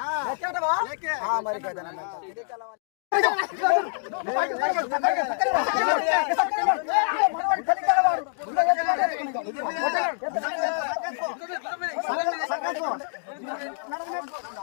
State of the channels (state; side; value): silent; right; digital silence